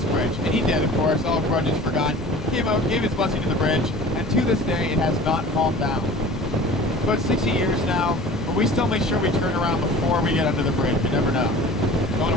bridge. And he did, of course, all grudges forgot. He came out, gave his blessing to the bridge, and to this day, it has not fallen down. It's about 60 years now, but we still make sure we turn around before we get under the bridge. You never know. Don't want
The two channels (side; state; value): both; normal; correlation 0.42